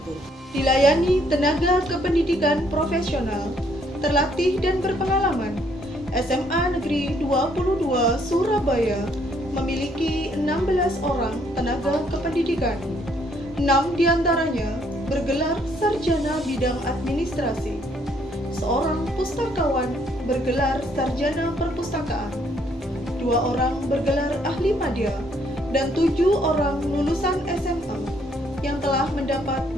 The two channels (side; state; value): both; normal; correlation 0.68